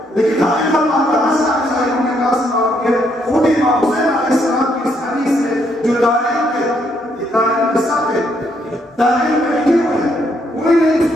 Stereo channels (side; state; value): both; normal; correlation 0.73